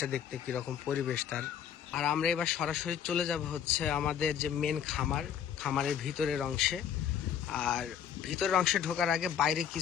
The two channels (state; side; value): quieter; right; 8.8 dB